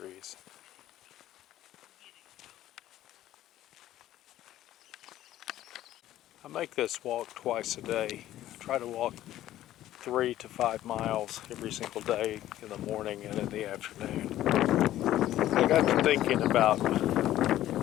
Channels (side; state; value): right; quieter; 13.5 dB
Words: I make this walk twice a day. I try to walk 3 to 5 miles every single day in the morning and in the afternoon. I got to thinking about